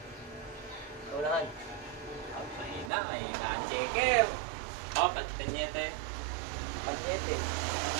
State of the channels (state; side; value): drops out; left; at 2.9 s